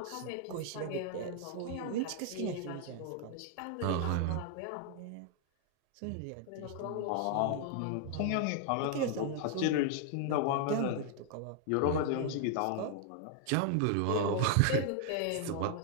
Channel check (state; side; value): different; both; correlation 0.00